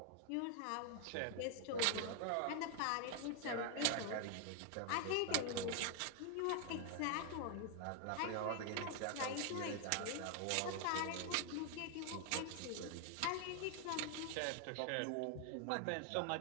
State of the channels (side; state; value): both; different; correlation 0.00